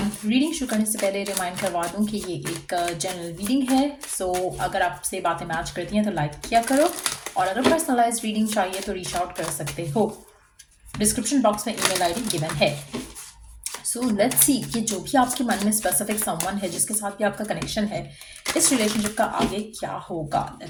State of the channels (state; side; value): identical; both; correlation 1.00